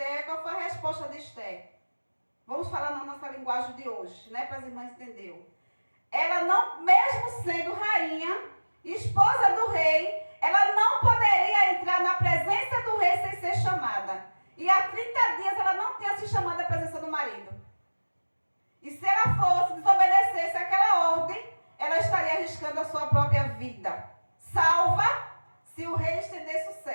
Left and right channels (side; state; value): both; inverted; correlation -1.00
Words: qual foi a resposta de Esther? Vamos falar na nossa linguagem de hoje, né? Para as irmãs entenderem. Ela não, mesmo sendo rainha, esposa do rei, ela não poderia entrar na presença do rei sem ser chamada. E há 30 dias ela não tinha se chamado à presença do marido. E se ela fosse, desobedecesse aquela ordem, ela estaria arriscando a sua própria vida. Salva se o rei estendesse o